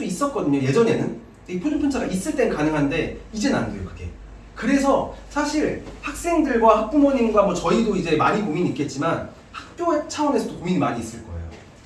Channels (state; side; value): identical; both; correlation 1.00